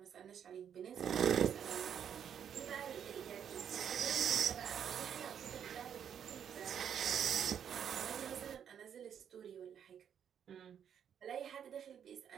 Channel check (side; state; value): left; quieter; 8.5 dB